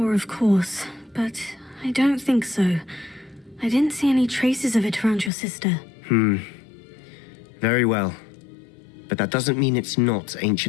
of course, but I don't think so. I didn't see any traces of it around your sister. Very well. But that doesn't mean it's not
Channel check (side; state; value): right; drops out; at 5.3 s